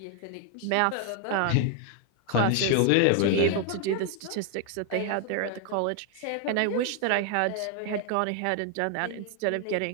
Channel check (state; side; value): different; both; correlation 0.00